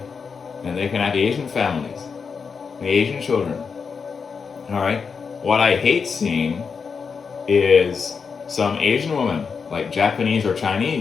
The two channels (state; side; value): quieter; right; 5.7 dB